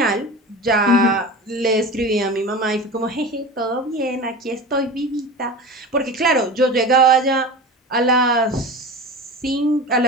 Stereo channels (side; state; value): both; normal; correlation 0.31